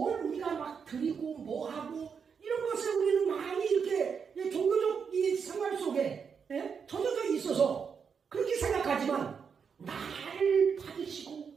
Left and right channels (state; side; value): quieter; left; 6.4 dB